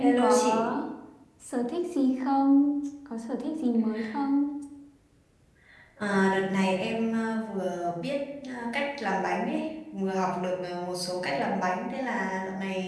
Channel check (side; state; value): both; identical; correlation 1.00